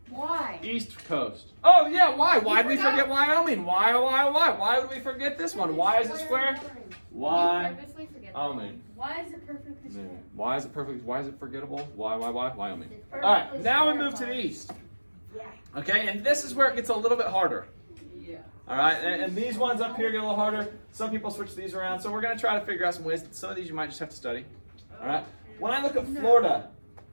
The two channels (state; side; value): inverted; both; correlation -1.00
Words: Why? East Coast. Oh, yeah. Why? Why did we forget Wyoming? Why? Why would we forget this one? Why is it square? Wyoming. Why is it perfectly square? Why is it perfect? Why is it forgettable? Why? Wyoming. All right, now we move to the east. Okay, and this is where it gets a little bit harder. Yeah. All right, and these ones up here get a little harder. Some people switch these around, so we're going to try to figure out some ways. Some of these you might just have to study. All right. When I look at Florida,